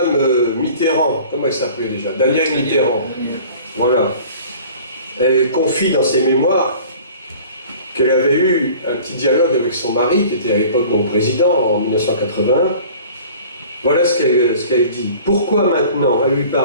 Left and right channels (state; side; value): inverted; both; correlation -0.46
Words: Mitterrand, comment elle s'appelait déjà? Danielle Mitterrand. Voilà. Elle confie dans ses mémoires qu'elle avait eu un petit dialogue avec son mari, qui était à l'époque mon président, en 1981. Voilà ce qu'elle dit. Pourquoi maintenant, elle lui